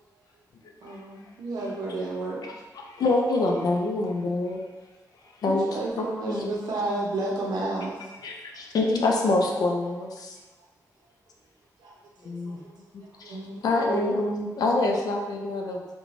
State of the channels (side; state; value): both; normal; correlation 0.68